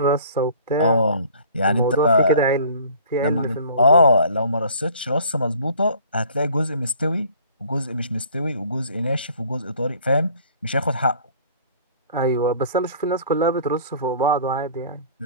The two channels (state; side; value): inverted; both; correlation -0.51